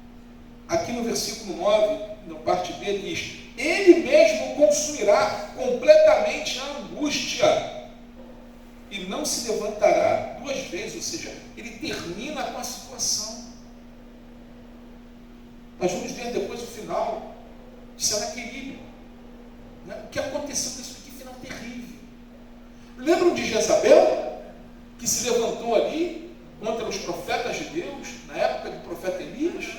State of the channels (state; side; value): identical; both; correlation 1.00